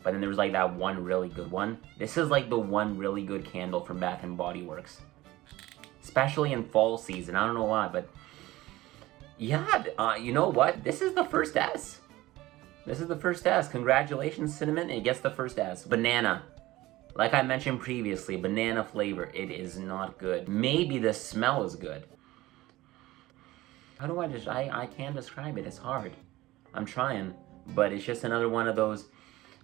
But then there's like that one really good one. This is like the one really good candle from Bath & Body Works. Especially in fall season. I don't know why, but yeah, you know what? This is the first S. This is the first S. Congratulations, Cinnamon. It gets the first S. Banana. Like I mentioned previously, banana flavor. It is not good. Maybe the smell is good. How do I can't describe it. It's hard. I'm trying. But it's just another one of those,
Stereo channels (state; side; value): quieter; left; 17.8 dB